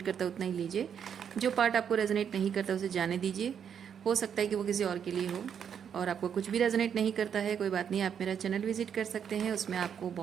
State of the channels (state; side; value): quieter; left; 8.0 dB